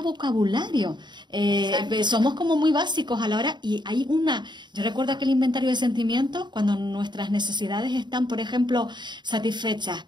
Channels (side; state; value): left; late; 0.22 ms